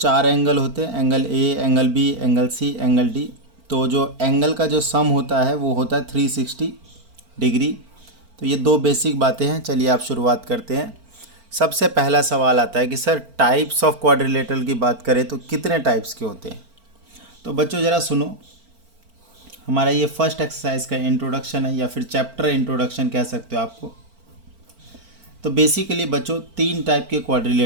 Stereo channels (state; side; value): late; left; 4.4 ms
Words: एंगल होते हैं। Angle A, angle B, angle C, angle D। तो जो एंगल का जो सम होता है वो होता है 360 डिग्री। तो ये 2 बेसिक बातें हैं। चलिए आप शुरुआत करते हैं। सबसे पहला सवाल आता है कि सर टाइप्स ऑफ क्वाड्रिलेटरल की बात करें तो कितने टाइप्स के होते हैं। तो बच्चों ज़रा सुनो, हमारा ये फर्स्ट एक्सरसाइज का इंट्रोडक्शन है या फिर चैप्टर इंट्रोडक्शन कह सकते हो आपको। तो बेसिकली बच्चों 3 टाइप के